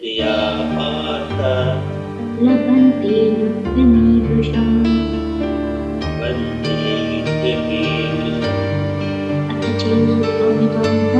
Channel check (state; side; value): identical; both; correlation 1.00